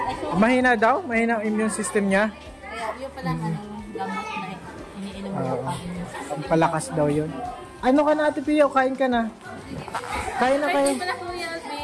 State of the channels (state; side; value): identical; both; correlation 1.00